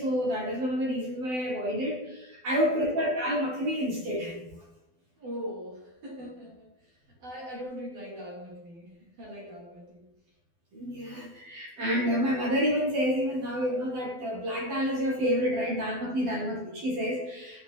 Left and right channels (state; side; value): late; left; 12 ms